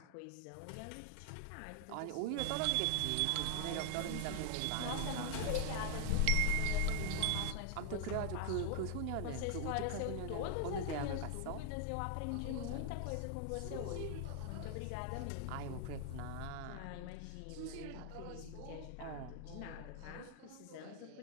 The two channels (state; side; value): different; both; correlation 0.00